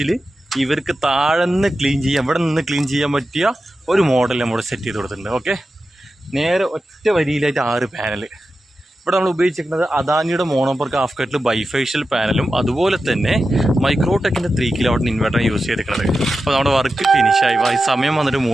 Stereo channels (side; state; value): both; normal; correlation 0.92